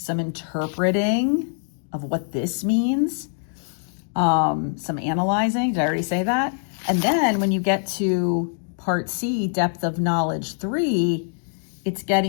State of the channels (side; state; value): right; silent; digital silence